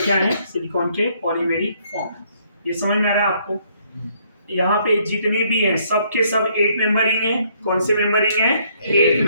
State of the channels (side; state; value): both; inverted; correlation -0.68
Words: क्या है? सिलिकॉन के पॉलीमेरिक फॉर्म. ये समझ में आ रहा है आपको? यहाँ पे जितने भी हैं सब के सब 8 मेंबरिंग है. कौन से मेंबरिंग है? 8